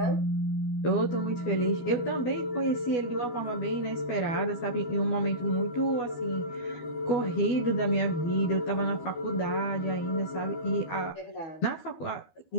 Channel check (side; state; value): right; late; 12 ms